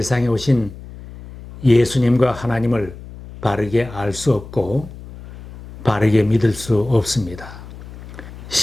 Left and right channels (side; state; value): left; noise; hum, 15 dB below the sound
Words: 오신 예수님과 하나님을 바르게 알 수 없고 바르게 믿을 수 없습니다.